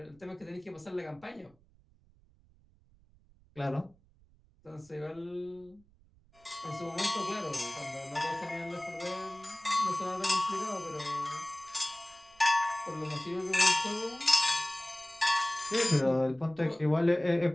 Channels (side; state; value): right; noise; rumble, 29 dB below the sound